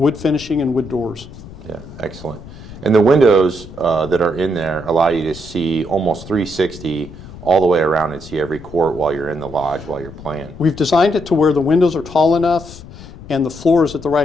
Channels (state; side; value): noise; left; rumble, 16 dB below the sound